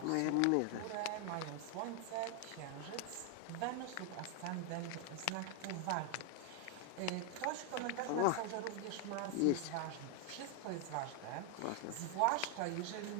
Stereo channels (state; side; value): different; both; correlation 0.00